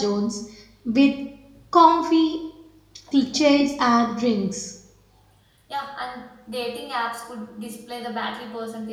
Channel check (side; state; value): both; identical; correlation 1.00